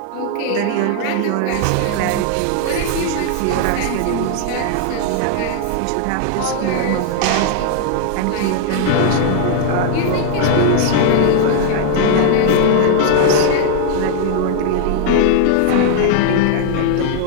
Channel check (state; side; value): different; both; correlation 0.00